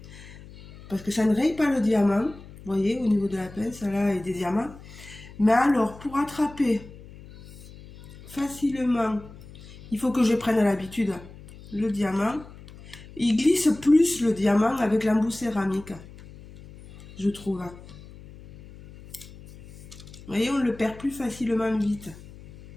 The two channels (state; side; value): noise; left; hum, 18 dB below the sound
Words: Parce que ça ne raye pas le diamant. Vous voyez, au niveau de la pince, là, et des diamants. Mais alors, pour attraper facilement, il faut que je prenne l'habitude. Le diamant, il glisse plus le diamant avec l'embout céramique, je trouve. Vous voyez, on le perd plus facilement vite.